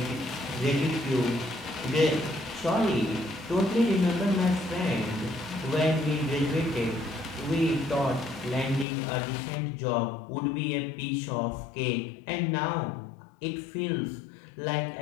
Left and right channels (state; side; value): drops out; right; at 8.8 s